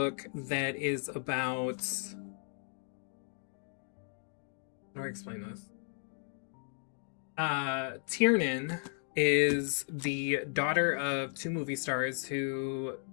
that is about... How do I explain this? Tiernan is the daughter of 2 movie stars who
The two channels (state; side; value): silent; right; digital silence